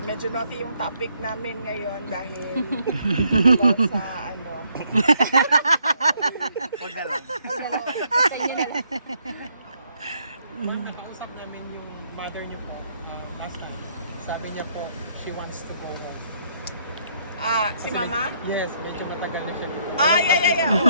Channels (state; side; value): inverted; both; correlation -0.71